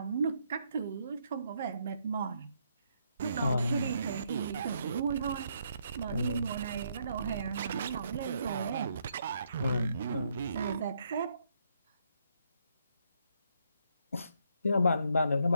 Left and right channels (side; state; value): both; inverted; correlation -0.74